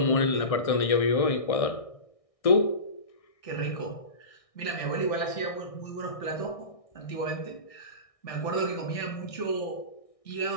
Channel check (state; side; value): late; right; 1.6 ms